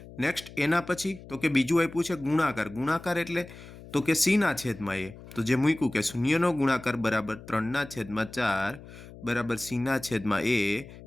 નેક્સ્ટ એના પછી તો કે બીજું આપ્યું છે ગુણાકાર। ગુણાકાર એટલે તો કે c/a તો જે મૂક્યું કે શૂન્યનો ગુણાકાર બરાબર 3/4 બરાબર c/a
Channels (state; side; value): noise; left; hum, 17 dB below the sound